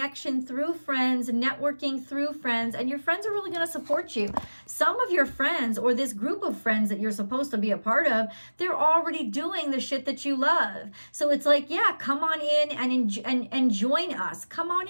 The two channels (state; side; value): inverted; both; correlation -1.00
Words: through friends, networking through friends, and your friends are really going to support you. Some of your friends, or this group of friends that you're supposed to be a part of, they're already doing the shit that you love. So it's like, yeah, come on in and join us. Come on